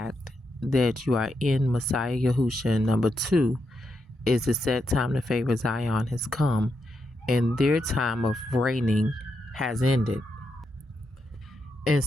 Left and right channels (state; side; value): normal; both; correlation 0.83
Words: that you are in Messiah Yahusha. And number two is the set time to favor Zion has come, and their time of reigning has ended. And